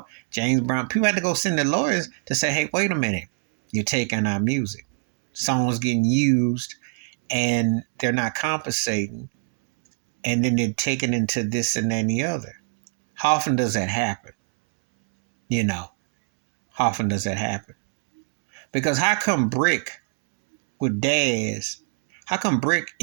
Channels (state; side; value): silent; left; 62 dB below the other